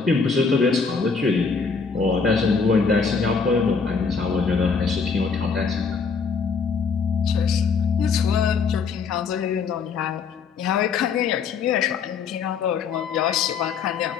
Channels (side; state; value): right; quieter; 5.4 dB